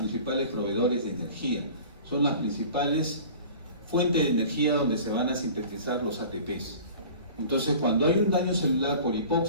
proveedores de energía, son las principales fuentes de energía donde se van a sintetizar los ATPs. Entonces, cuando hay un daño celular por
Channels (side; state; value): both; inverted; correlation -0.42